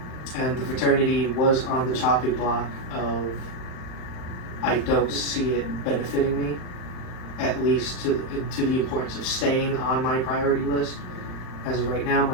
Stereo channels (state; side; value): late; right; 39 ms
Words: And the fraternity was on the chopping block of I don't see it benefiting me, at least to the importance of staying on my priority list. As of right now,